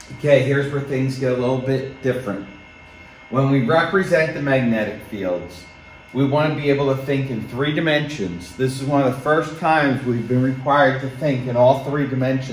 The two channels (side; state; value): both; identical; correlation 1.00